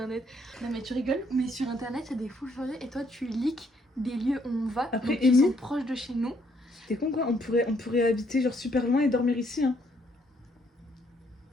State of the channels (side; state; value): both; normal; correlation 0.69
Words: Non mais tu rigoles, mais sur internet c'est des fous furieux et toi tu leaks des lieux où on va Après, qui sont proches de chez nous. T'es con quoi, on pourrait habiter genre super loin et dormir ici hein.